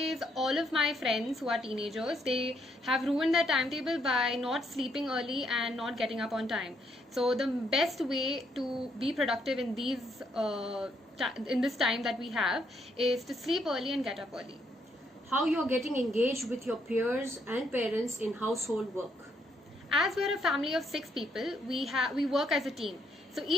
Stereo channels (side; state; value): both; normal; correlation 0.73